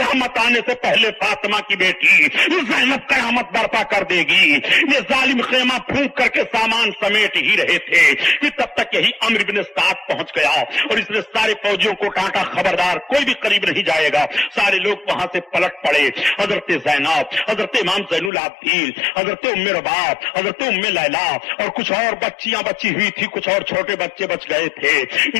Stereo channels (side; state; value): right; drops out; at 18.3 s